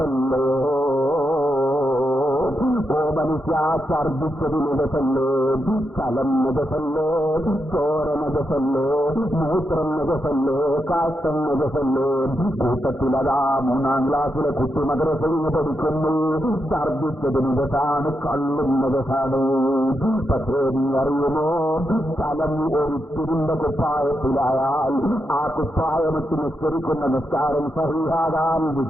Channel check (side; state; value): both; normal; correlation 0.84